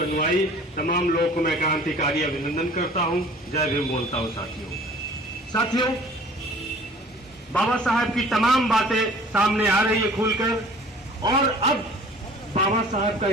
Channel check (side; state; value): both; normal; correlation 0.49